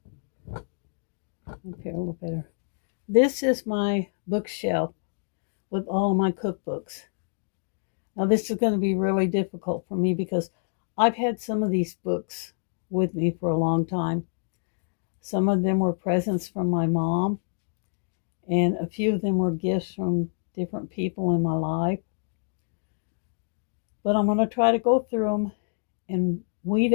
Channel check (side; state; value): right; silent; digital silence